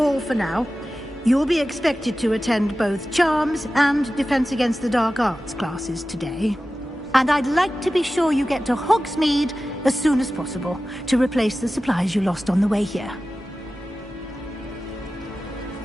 for now. You'll be expected to attend both Charms and Defense Against the Dark Arts classes today. And I'd like to be sure you get to Hogsmeade as soon as possible to replace the supplies you lost on the way here.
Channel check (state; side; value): normal; both; correlation 0.95